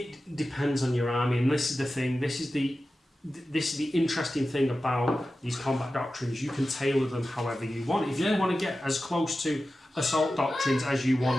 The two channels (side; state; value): both; normal; correlation 0.94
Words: depends on your army, and this is the thing. This is the interesting thing about these combat doctrines. You can tailor them however you want. If you want to get as close to Assault Doctrines as you